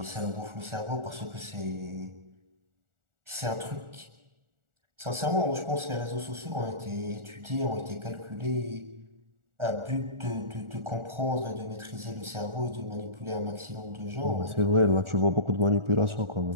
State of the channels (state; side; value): late; left; 1.4 ms